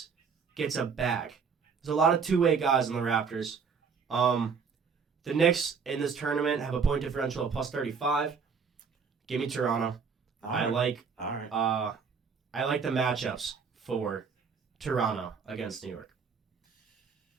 gets a bag. There's a lot of two-way guys in the Raptors. The Knicks in this tournament have a point differential of plus 35. Give me Toronto. I like the matchups for Toronto against New York.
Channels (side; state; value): left; quieter; 5.8 dB